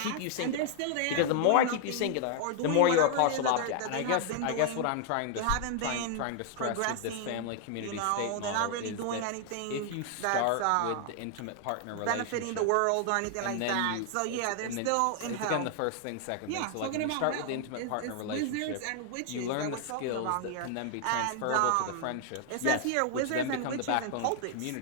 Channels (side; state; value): both; different; correlation 0.00